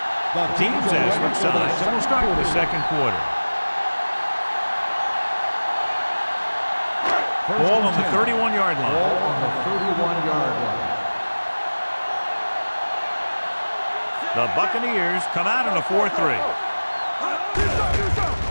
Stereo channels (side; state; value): both; inverted; correlation -1.00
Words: The teams as switch sides, and we'll start with the second quarter. Ball on the 31-yard line. Ball on the 31-yard line. The Buccaneers come out in a 4-3.